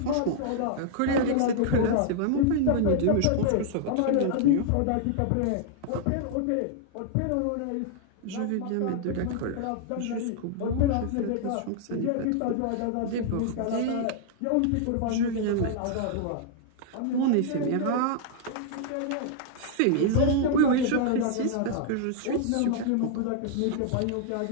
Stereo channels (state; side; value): different; both; correlation -0.01